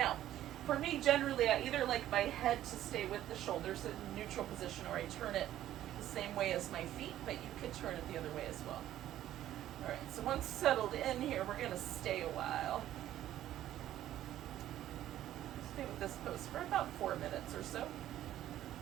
for me, generally, I either like my head to stay with the shoulders in neutral position, or I turn it the same way as my feet, but you could turn it the other way as well. All right, so once settled in here, we're going to stay a while. Stay with this pose for about 4 minutes or so.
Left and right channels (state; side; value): quieter; left; 12.7 dB